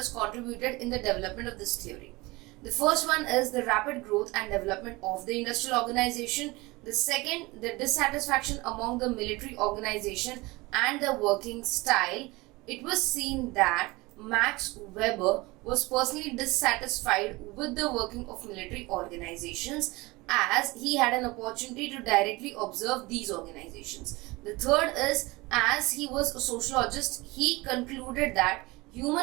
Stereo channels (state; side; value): quieter; left; 22.7 dB